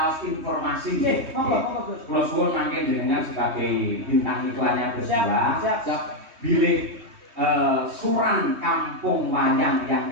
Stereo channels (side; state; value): left; late; 3.2 ms